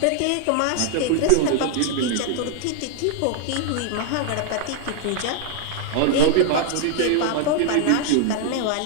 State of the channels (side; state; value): both; different; correlation 0.00